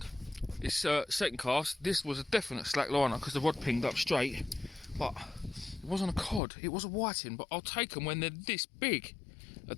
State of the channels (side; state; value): right; drops out; at 6.4 s